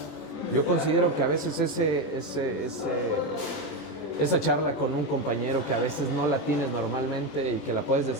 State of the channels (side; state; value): right; late; 20 ms